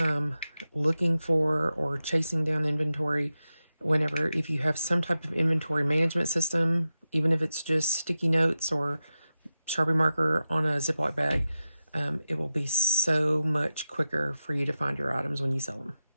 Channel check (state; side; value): inverted; both; correlation -0.92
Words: looking for or chasing down inventory whenever, if you have some type of inventory management system, even if it's just sticky notes or Sharpie marker on a Ziploc bag, it will be so much quicker for you to find your items when you sell them.